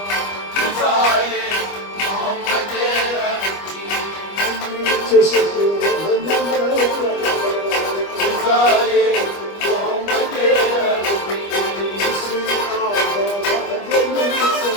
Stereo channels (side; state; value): right; late; 25 ms